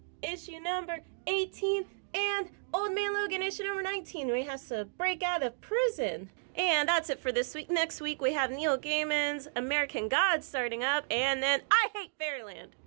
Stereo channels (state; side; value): silent; left; digital silence